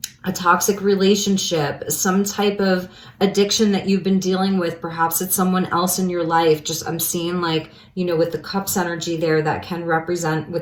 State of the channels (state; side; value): identical; both; correlation 1.00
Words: toxic relationship, some type of addiction that you've been dealing with, perhaps it's someone else in your life. Just, I'm seeing like, you know, with the cups energy there, that can represent